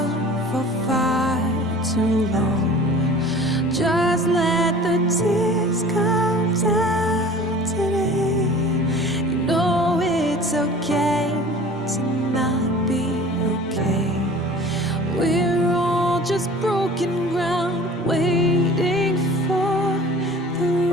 for far too long. Just let the tears come down today. You know it's okay to not be okay. We're all just broken ground, waiting for the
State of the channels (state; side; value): normal; both; correlation 0.44